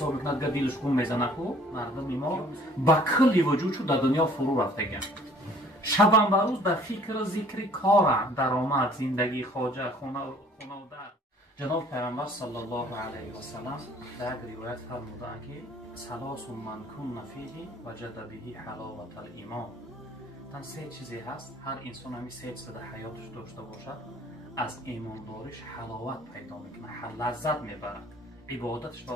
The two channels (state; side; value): normal; both; correlation 0.55